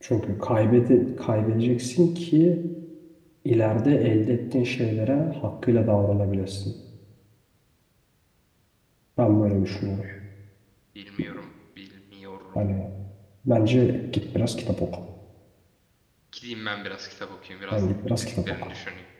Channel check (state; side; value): identical; both; correlation 1.00